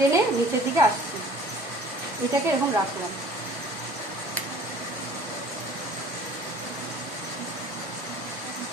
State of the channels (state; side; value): normal; both; correlation 0.49